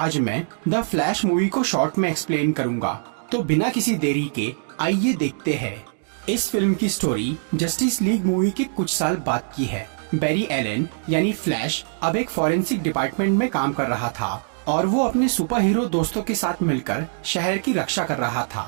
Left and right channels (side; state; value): left; silent; digital silence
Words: मैं द फ्लैश मूवी को शॉर्ट में एक्सप्लेन करूंगा। तो बिना किसी देरी के आइए देखते हैं। इस फिल्म की स्टोरी जस्टिस लीग मूवी के कुछ साल बाद की है। बैरी एलन यानी फ्लैश अब एक फॉरेंसिक डिपार्टमेंट में काम कर रहा था और वो अपने सुपर हीरो दोस्तों के साथ मिलकर शहर की रक्षा कर रहा